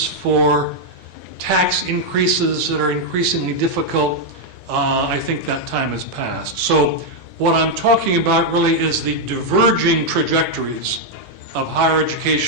for tax increases that are increasingly difficult, I think that time has passed. So what I'm talking about really is the diverging trajectories of higher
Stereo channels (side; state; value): both; normal; correlation -0.01